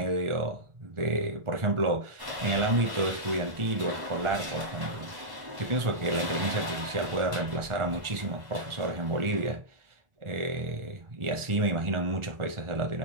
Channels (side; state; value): left; late; 1.4 ms